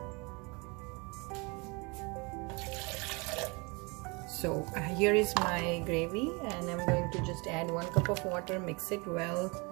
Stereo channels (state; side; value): quieter; left; 28.7 dB